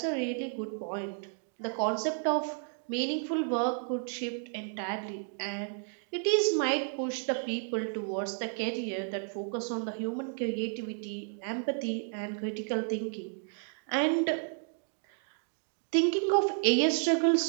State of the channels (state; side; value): silent; left; 56 dB below the other